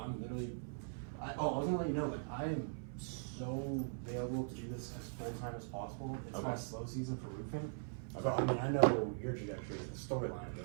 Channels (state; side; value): silent; left; 50 dB below the other